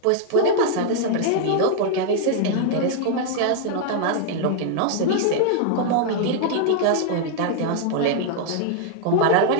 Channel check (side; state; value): both; different; correlation 0.00